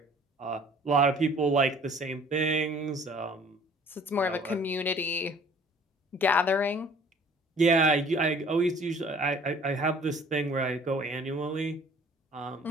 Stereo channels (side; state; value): both; normal; correlation 0.53